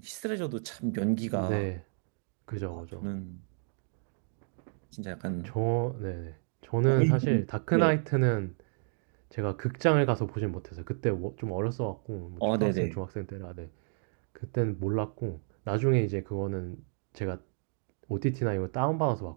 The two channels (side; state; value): left; silent; 57 dB below the other